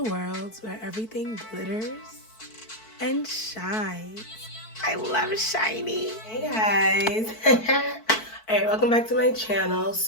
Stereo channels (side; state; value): right; late; 4.5 ms